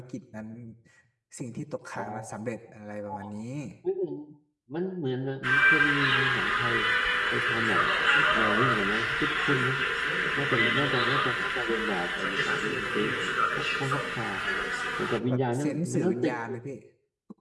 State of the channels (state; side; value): identical; both; correlation 1.00